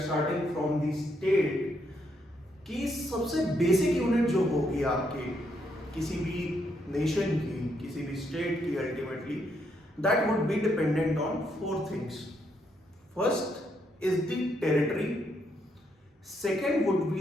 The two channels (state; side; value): normal; both; correlation 0.76